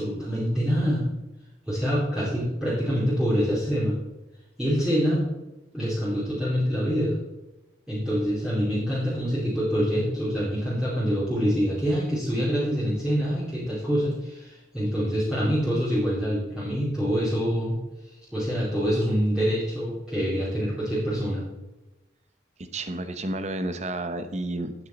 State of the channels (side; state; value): both; normal; correlation 0.84